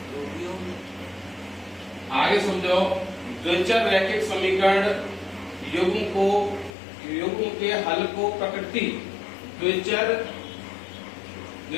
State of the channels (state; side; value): drops out; right; at 6.7 s